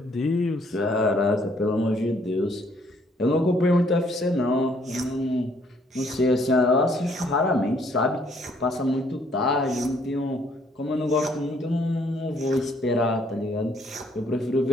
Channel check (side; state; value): both; normal; correlation 0.66